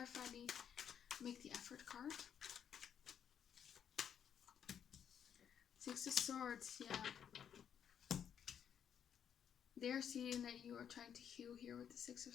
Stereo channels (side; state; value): right; quieter; 8.6 dB